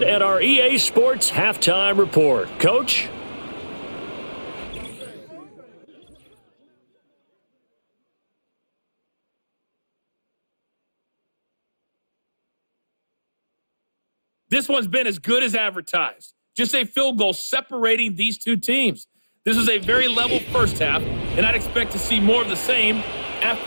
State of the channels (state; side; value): inverted; both; correlation -1.00